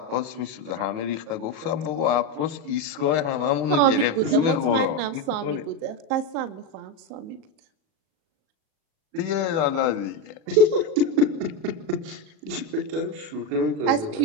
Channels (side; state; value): left; late; 38 ms